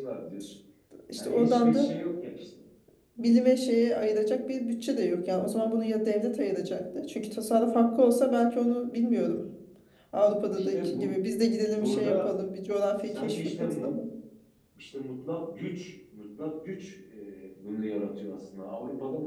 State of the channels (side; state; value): both; identical; correlation 1.00